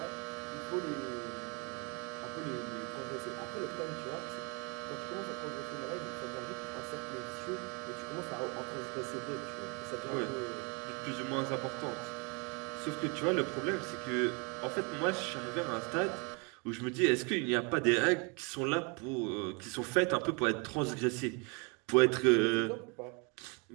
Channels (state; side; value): quieter; left; 32.3 dB